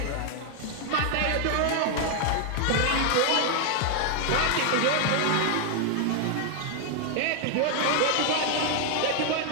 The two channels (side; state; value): both; different; correlation 0.00